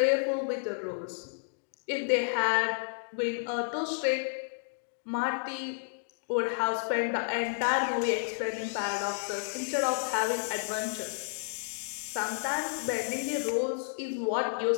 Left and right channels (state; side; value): silent; right; digital silence